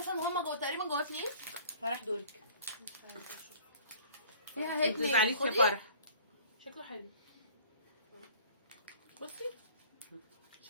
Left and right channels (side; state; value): both; inverted; correlation -0.50